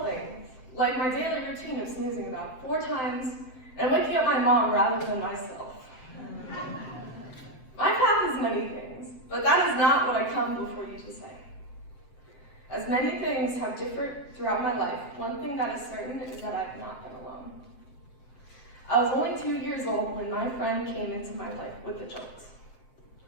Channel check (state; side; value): late; right; 7.8 ms